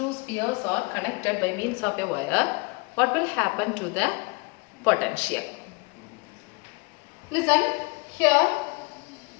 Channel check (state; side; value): quieter; right; 28.4 dB